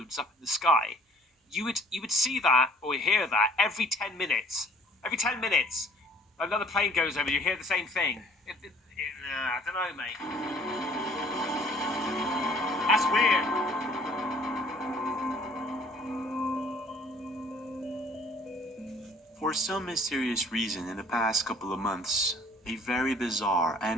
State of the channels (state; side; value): normal; both; correlation 0.56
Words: up in the sky. You would see that or hear that every 10 minutes. Every 10 minutes, another plane goes over. You hear the same thing. I don't know, mate. That's weird. For some mysterious reason, in the past couple of months, a very bizarre